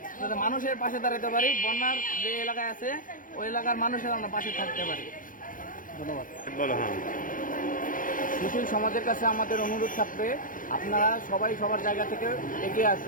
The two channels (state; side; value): late; right; 0.39 ms